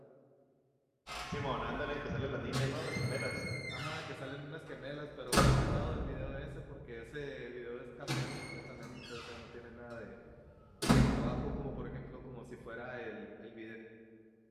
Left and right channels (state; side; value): identical; both; correlation 1.00